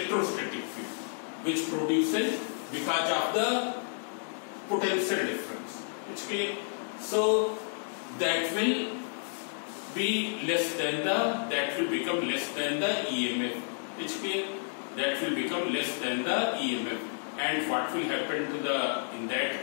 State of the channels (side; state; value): right; silent; digital silence